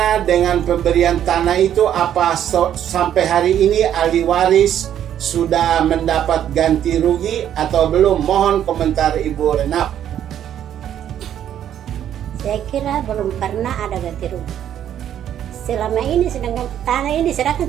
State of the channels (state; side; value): quieter; left; 10.3 dB